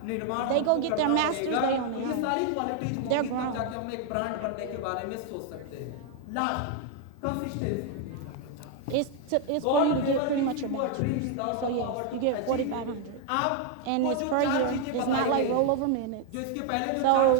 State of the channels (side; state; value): both; different; correlation 0.01